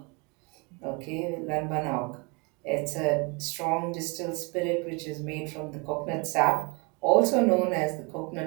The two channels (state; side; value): quieter; left; 30.8 dB